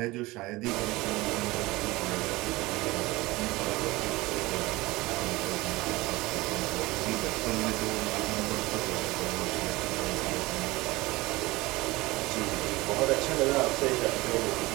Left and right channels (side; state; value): left; quieter; 20.9 dB